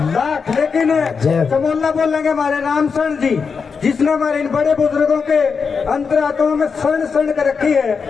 लाख। लेकिन समोल्ला बोलेंगे हमारे रामसर जी, जिसने हमारे इन बड़े बुजुर्गों के अंतरात्मा में शरण शरण कर रखी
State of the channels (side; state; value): right; quieter; 5.6 dB